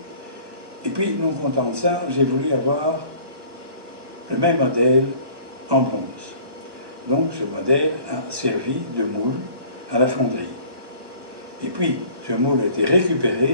Et puis, non content de ça, j'ai voulu avoir le même modèle en bronze. Donc ce modèle a servi de moule à la fonderie. Et puis, ce moule a été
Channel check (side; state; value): left; late; 1.2 ms